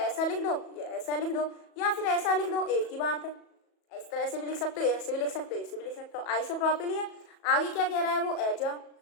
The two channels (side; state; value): right; late; 37 ms